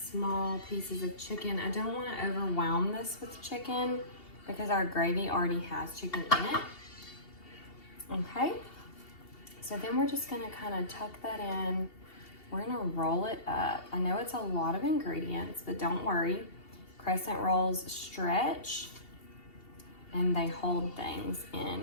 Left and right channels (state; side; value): late; right; 2.7 ms